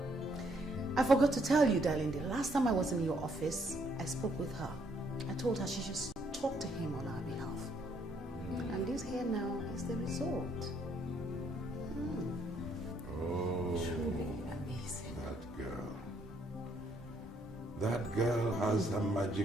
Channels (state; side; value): normal; both; correlation 0.70